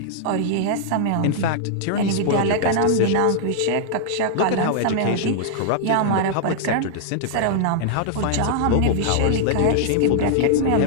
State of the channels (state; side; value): different; both; correlation -0.01